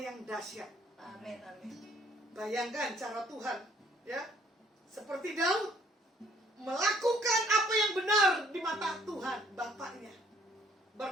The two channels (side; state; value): both; normal; correlation 0.62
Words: dahsyat. Amin. Amin. Bayangkan cara Tuhan, ya, seperti Daud melakukan apa yang benar di mata Tuhan Bapaknya.